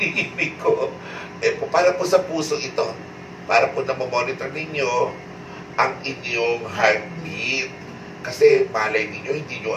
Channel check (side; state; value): both; identical; correlation 1.00